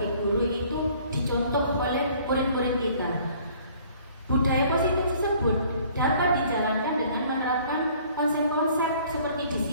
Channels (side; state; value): both; inverted; correlation -0.56